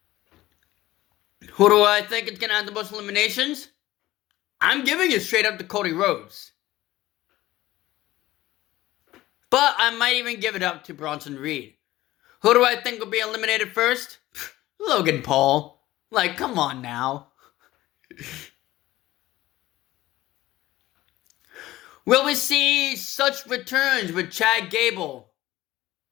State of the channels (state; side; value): quieter; right; 16.4 dB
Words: Who do I think is going to have the most eliminations? I'm giving it straight up to Cody Rhodes. But I might even give it up to Bronson Reed. Who do I think will be eliminated first? Logan Paul. Like, come on now. Will we see such returns with Chad Gable?